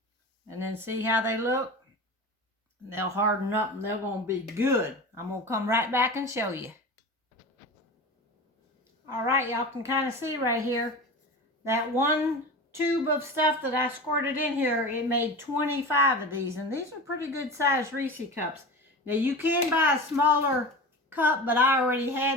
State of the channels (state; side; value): normal; both; correlation 0.31